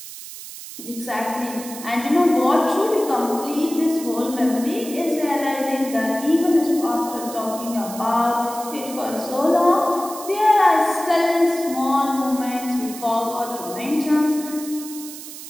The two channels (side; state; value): right; noise; hiss, 13 dB below the sound